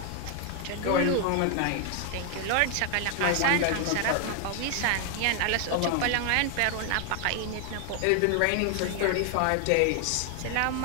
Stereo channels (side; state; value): both; different; correlation 0.00